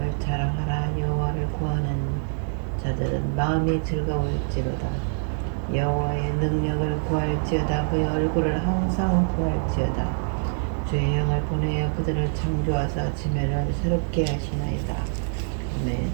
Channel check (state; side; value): silent; left; 61 dB below the other